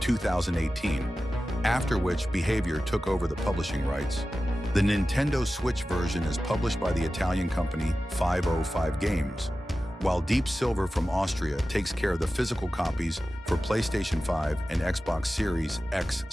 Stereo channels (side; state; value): both; normal; correlation 0.94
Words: after which Behaviour took over the publishing rights. The Nintendo Switch version is published by the Italian company 505 Games, while Deep Silver from Austria takes care of the physical copies for PlayStation 5 and Xbox Series